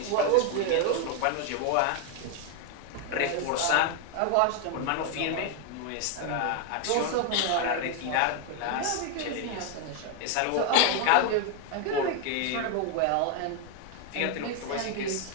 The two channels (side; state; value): both; different; correlation 0.01